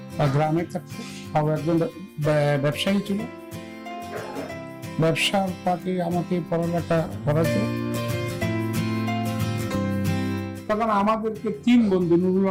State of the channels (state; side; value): identical; both; correlation 1.00